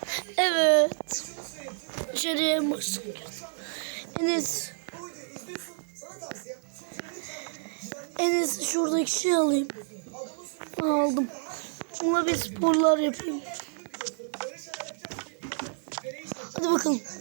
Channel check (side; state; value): left; silent; digital silence